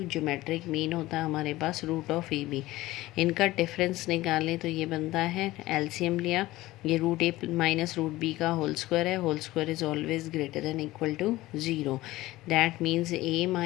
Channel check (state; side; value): quieter; right; 17.7 dB